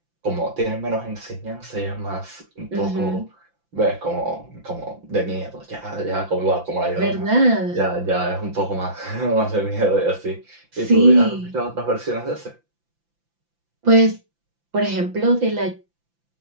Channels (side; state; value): left; late; 5.9 ms